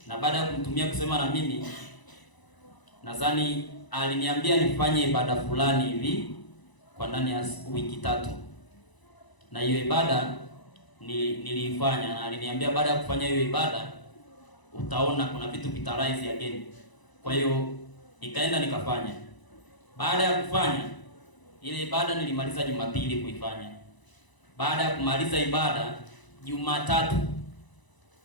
Na baada ya kumtumia kusema na mimi, nadhani aliniambia nifanye ibada fulani hivi kwa ndani ya wiki 3. Na hiyo ibada niliifanya, na aliniambia baada ya kufanya hiyo ibada utaona kuna vitu vitarise again. Kwa hiyo nikaenda nikafanya. Baada ya kufanya ile ibada nilimaliza Jumapili kuifanya. Baada ya kumaliza ibada Jumatatu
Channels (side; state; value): right; late; 1.0 ms